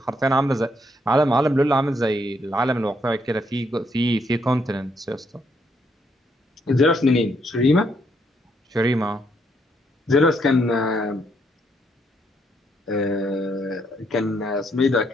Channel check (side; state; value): both; normal; correlation 0.74